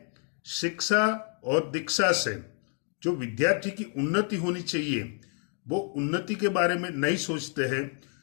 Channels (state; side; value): quieter; right; 39.2 dB